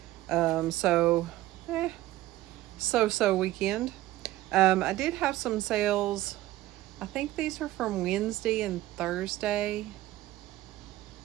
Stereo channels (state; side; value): quieter; left; 16.1 dB